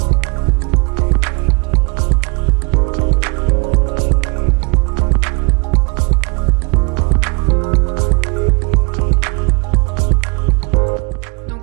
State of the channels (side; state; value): left; quieter; 32.2 dB